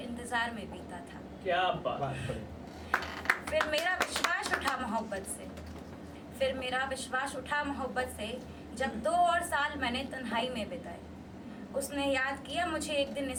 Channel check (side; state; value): both; identical; correlation 1.00